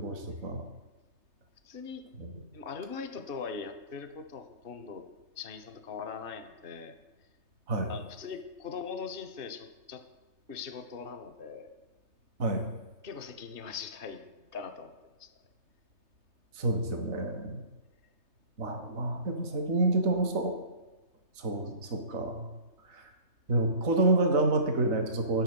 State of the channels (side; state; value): left; late; 3.3 ms